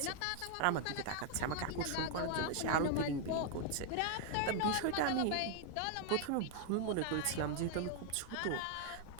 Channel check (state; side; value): different; both; correlation 0.00